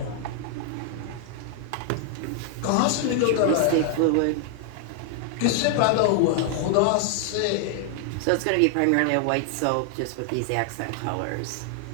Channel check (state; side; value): different; both; correlation 0.00